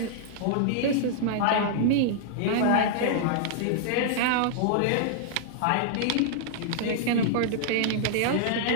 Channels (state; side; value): different; both; correlation -0.01